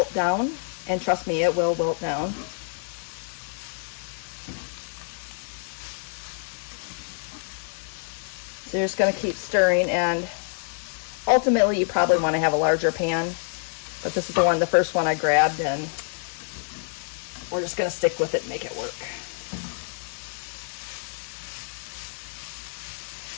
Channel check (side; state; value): right; silent; digital silence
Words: down. And trust me, it will wilt down. So you're just going to keep stirring, and ultimately you probably want to have a larger pan, but this is the first one I grabbed, and we're just going to stick with it and make it work.